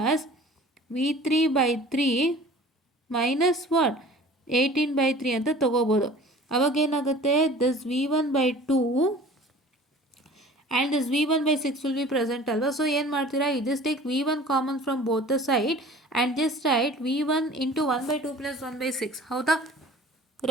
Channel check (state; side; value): normal; both; correlation 0.45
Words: V3 by 3 minus what 18 by 3 ಅಂತ ತೊಗೋಬೋದು. ಅವಾಗ ಏನಾಗುತ್ತೆ, this V1 by 2 and this V1 by 6 will be present ಅಲ್ವಾ? ಸೊ ಏನು ಮಾಡ್ತೀರಾ, you just take V1 common from both the side and just write V1 into 1 by 2 plus 1 by 6. ಹೌದಾ?